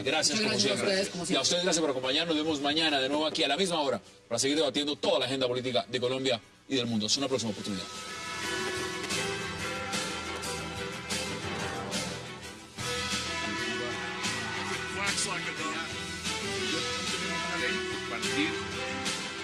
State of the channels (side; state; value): both; identical; correlation 1.00